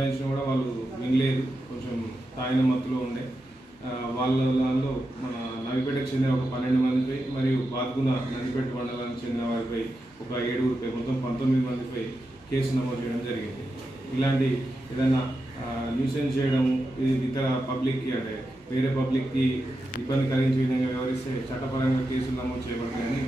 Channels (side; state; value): both; normal; correlation 0.88